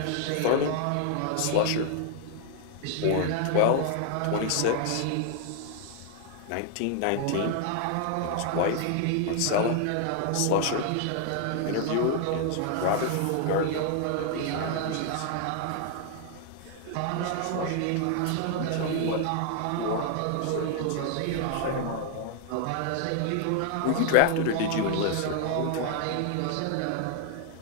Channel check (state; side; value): different; both; correlation 0.00